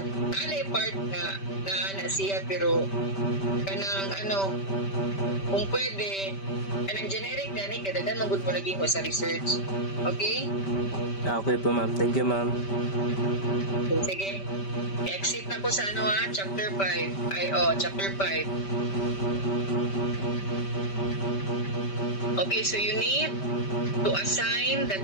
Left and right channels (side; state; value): right; late; 5.1 ms